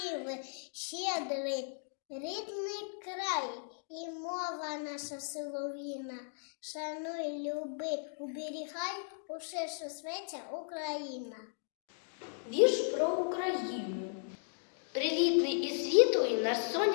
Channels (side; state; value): right; silent; digital silence